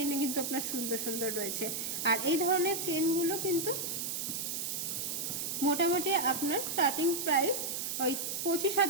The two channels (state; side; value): noise; right; hiss, 2 dB below the sound